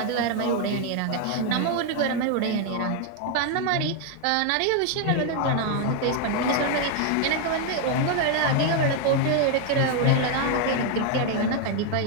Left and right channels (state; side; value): different; both; correlation 0.01